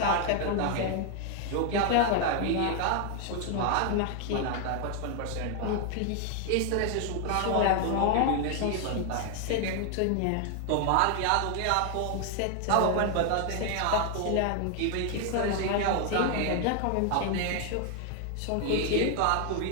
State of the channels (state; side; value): different; both; correlation 0.00